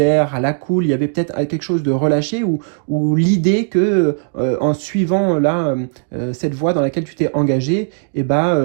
à la cool. Il y avait peut-être quelque chose de relâché ou l'idée que en suivant là cette voie dans laquelle tu t'es engagé, et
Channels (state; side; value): silent; left; digital silence